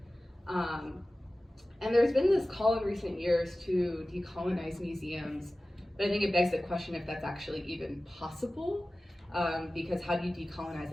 And there's been this call in recent years to decolonize museums, but I think it begs the question if that's actually even possible, because how do you decolonize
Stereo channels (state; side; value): normal; both; correlation 0.96